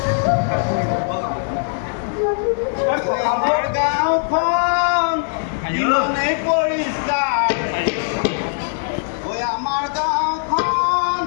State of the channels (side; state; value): right; silent; digital silence